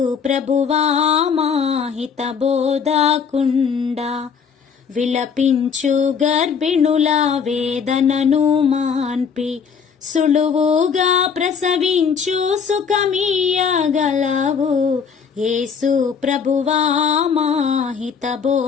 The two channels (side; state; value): right; quieter; 6.4 dB